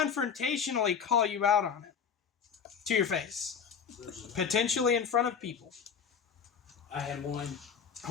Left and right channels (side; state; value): right; quieter; 7.0 dB